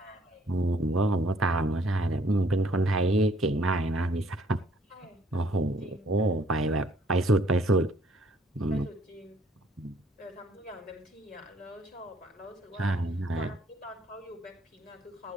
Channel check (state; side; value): normal; both; correlation 0.62